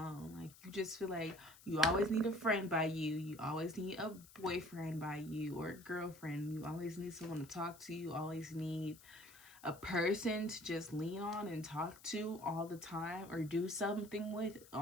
like, you just feel like you always need a friend by you always need a boyfriend by you, or a girlfriend, you always need someone to talk to, you always need a person to just lean on and talk to all the time, or do something with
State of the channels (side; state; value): left; noise; hiss, 21 dB below the sound